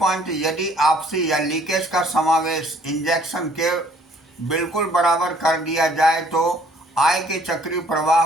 यदि आपसी या लीकेज का समावेश इंजेक्शन के बिल्कुल बराबर कर दिया जाए तो आय के चक्रीय प्रवाह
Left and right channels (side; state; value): both; normal; correlation 0.60